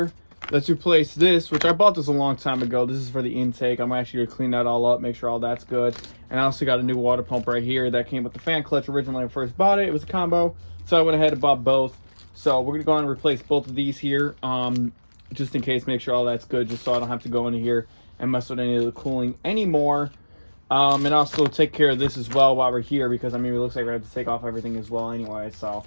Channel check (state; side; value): inverted; both; correlation -1.00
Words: let's replace this, which I bought this a long time ago. This is for the intake. I'm actually gonna clean that all up, make sure all that's good. And I also got a new water pump right here that came with the fan clutch originally when I first bought it. It was a combo, so I went ahead and bought both. So we're gonna go on and replace both of these here, just in case, make sure all that's good, just so I don't have to go into here and mess with any of the cooling anymore. And also take care of this as well while we're here, because I mean, it looks like we have to take off everything as well anyway. So